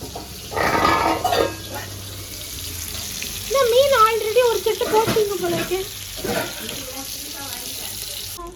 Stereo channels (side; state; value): both; identical; correlation 1.00